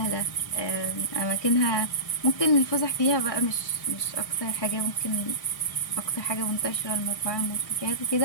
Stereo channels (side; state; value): right; late; 1.6 ms